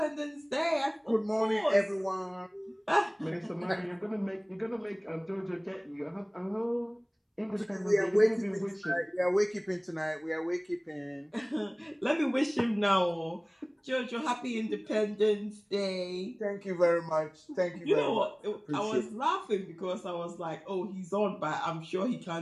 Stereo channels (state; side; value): identical; both; correlation 1.00